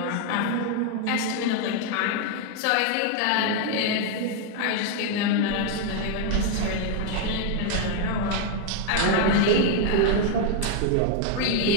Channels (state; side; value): different; both; correlation 0.00